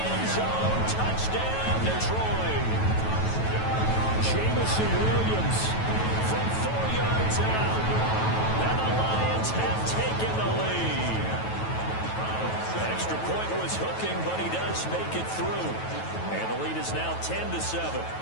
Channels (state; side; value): late; right; 9.2 ms